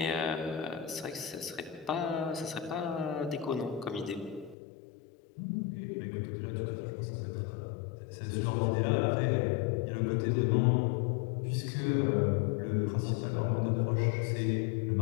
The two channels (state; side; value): drops out; right; at 4.5 s